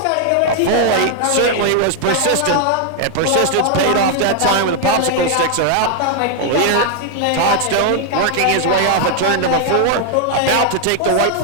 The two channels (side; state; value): both; different; correlation 0.00